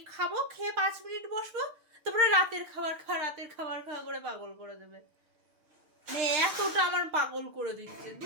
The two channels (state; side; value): late; left; 6.6 ms